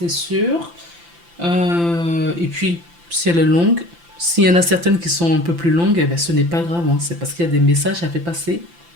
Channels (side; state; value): left; late; 5.9 ms